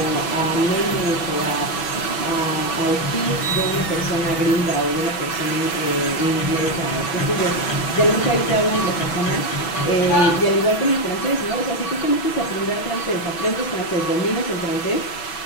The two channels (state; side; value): late; right; 6.1 ms